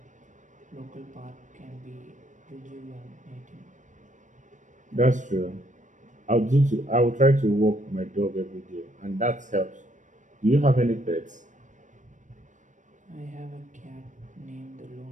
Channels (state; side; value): late; left; 0.36 ms